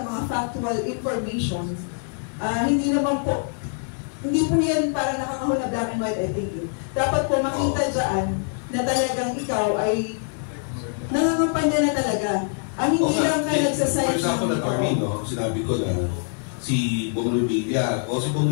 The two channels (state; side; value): silent; right; 63 dB below the other